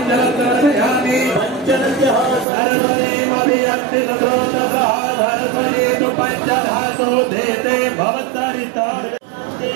जलं समर्पयामि पञ्चदशः सर्वदेवभियन्ति तथोदशः सर्वदेव पञ्चधातो धेते भवतरिता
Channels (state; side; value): drops out; left; at 2.5 s